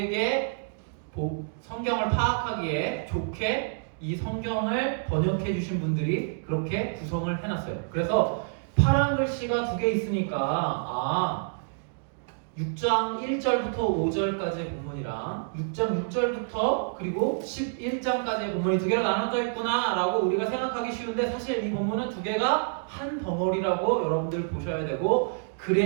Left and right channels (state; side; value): silent; left; digital silence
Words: 성경을 파악하기에 좋게 이 성경을 번역해 주신 분들이 그렇게 구성을 해놨어요. 그래서 파란 글씨가 두 개 있으니까 6장 1절부터 5절까지의 본문이랑 6장 6절부터 그리고 11장까지의 본문이 두 개로 나눠져 있구나 라고 우리가 생각하기 쉬운데 사실 이 본문은 두 개가 한 덩어리라고 여러분들 보셔야 되고